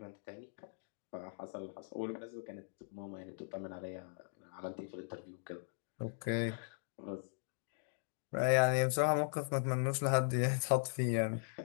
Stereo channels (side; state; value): right; silent; digital silence